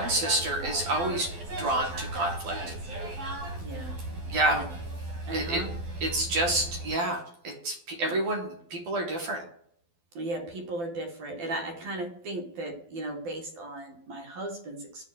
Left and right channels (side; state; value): left; late; 12 ms